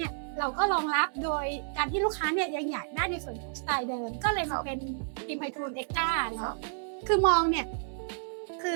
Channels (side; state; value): left; silent; 57 dB below the other